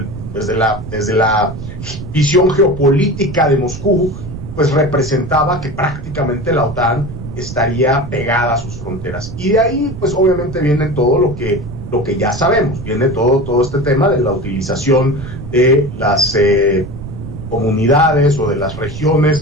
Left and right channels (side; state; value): right; noise; rumble, 10 dB below the sound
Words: la visión geopolítica de Moscú, pues representaba que prácticamente la OTAN estaría pegada a sus fronteras. Y de ahí, pues obviamente viene todo lo que ya sabemos, viene todo este tema de la utilización de las comunidades o de las